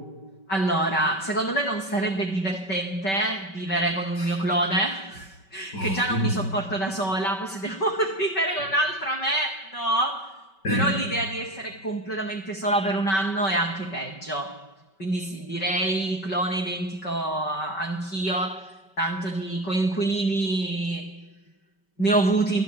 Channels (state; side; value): late; right; 5.2 ms